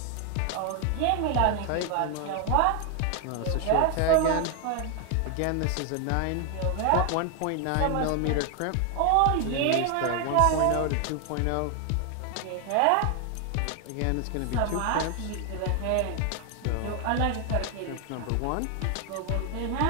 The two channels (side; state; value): both; different; correlation 0.01